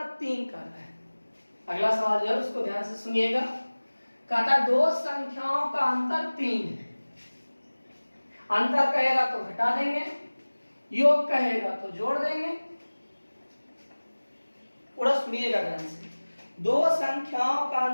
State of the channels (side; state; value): both; inverted; correlation -1.00